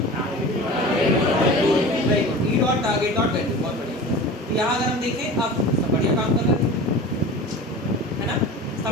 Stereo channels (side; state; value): both; normal; correlation 0.35